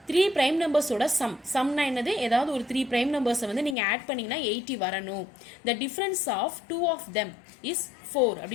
3 prime numbers ஓட sumனா என்னது? ஏதாவது ஒரு 3 prime numbers வந்து நீங்க ஆட் பண்ணீங்கன்னா 80 வரணும். The difference of two of them is 4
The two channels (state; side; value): drops out; right; at 3.8 s